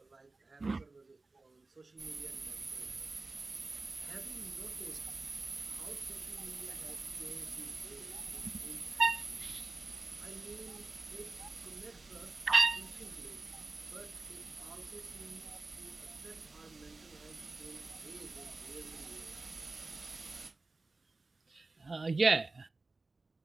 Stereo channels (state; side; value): quieter; left; 3.5 dB